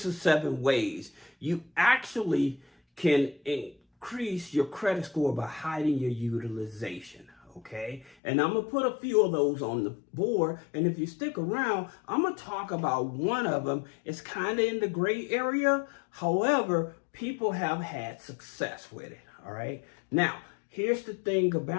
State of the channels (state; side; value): drops out; right; at 8.2 s